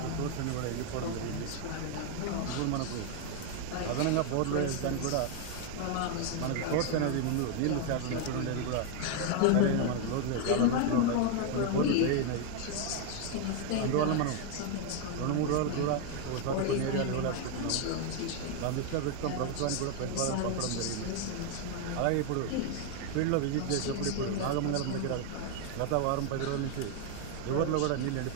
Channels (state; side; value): different; both; correlation 0.01